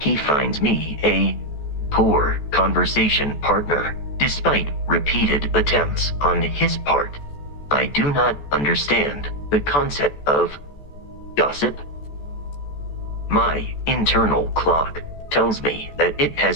finds me a poor conversation partner, despite repeated attempts on his part. I do not understand the concept of gossip. My internal clock tells me that it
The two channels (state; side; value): late; right; 14 ms